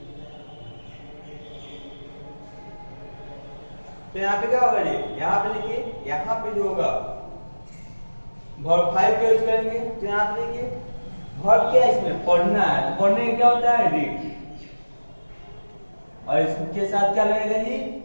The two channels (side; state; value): both; inverted; correlation -1.00